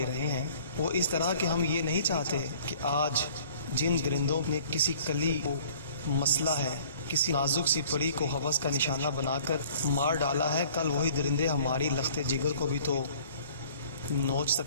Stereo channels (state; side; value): inverted; both; correlation -0.52